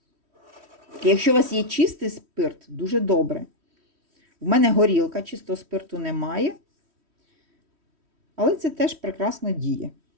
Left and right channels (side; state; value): left; late; 3.1 ms